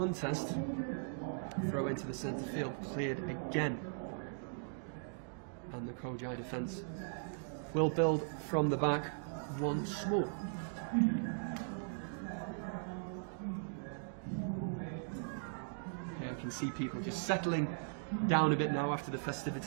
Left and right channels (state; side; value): silent; left; digital silence